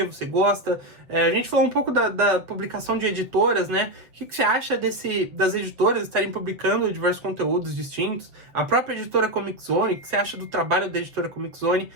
você gosta? A gente falou um pouco da publicação de editoras, né? O que você acha das editoras estarem publicando diversos conteúdos distintos? A própria editora Comic Zone, o que você acha do trabalho da editora Comic Zone?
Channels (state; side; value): late; left; 7.7 ms